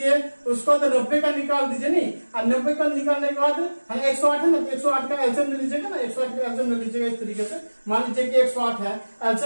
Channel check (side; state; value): both; inverted; correlation -1.00